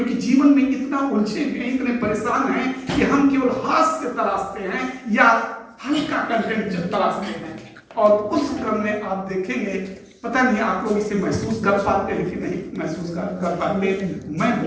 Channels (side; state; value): both; identical; correlation 1.00